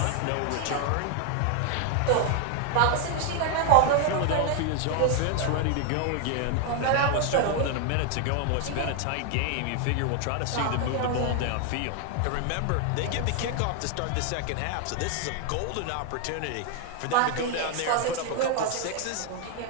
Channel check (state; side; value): different; both; correlation 0.00